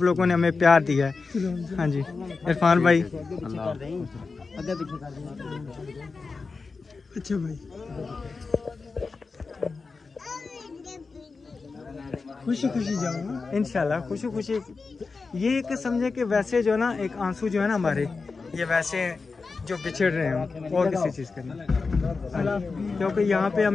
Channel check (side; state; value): right; quieter; 4.4 dB